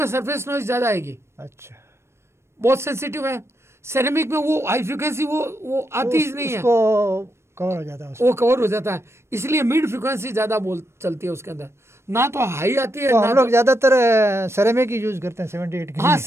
सरफेस नॉइज ज़्यादा आएगी। अच्छा, बहुत सेंसिटिव है। सेरेमिक में वो हाई फ्रिक्वेंसी वो आती ही नहीं है, कवर हो जाता है, वो कवर हो जाता है, इसलिए मिड फ्रिक्वेंसी ज़्यादा चलती है उसके अंदर, ना तो हाई आती है। तो हम लोग ज़्यादातर सेरेमिक ही यूज करते हैं 78 की। हाँ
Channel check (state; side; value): late; left; 0.13 ms